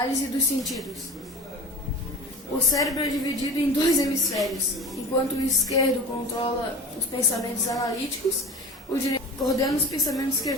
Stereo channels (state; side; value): normal; both; correlation 0.34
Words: dos sentidos. O cérebro é dividido em dois hemisférios. Enquanto o esquerdo controla os pensamentos analíticos, o direito coordena os pensamentos